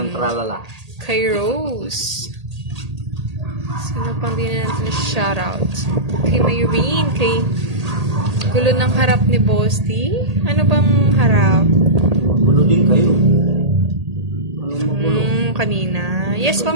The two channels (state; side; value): late; left; 1.8 ms